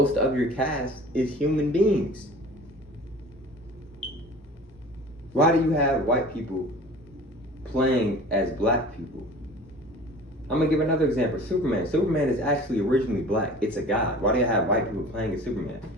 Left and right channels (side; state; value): both; normal; correlation 0.42